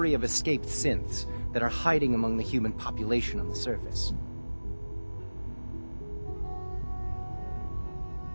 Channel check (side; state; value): both; inverted; correlation -1.00